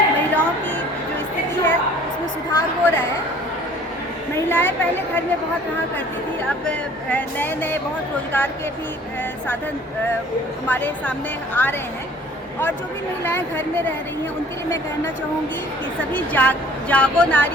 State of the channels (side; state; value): both; normal; correlation 0.52